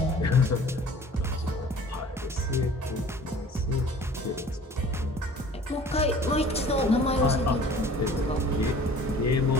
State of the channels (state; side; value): normal; both; correlation 0.48